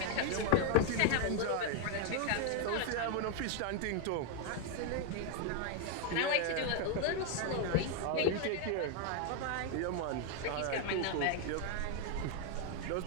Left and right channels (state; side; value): different; both; correlation 0.01